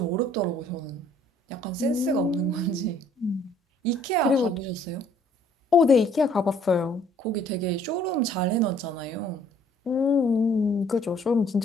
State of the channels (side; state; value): both; normal; correlation 0.59